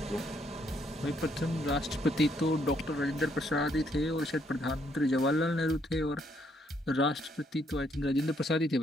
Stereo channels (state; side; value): normal; both; correlation 0.71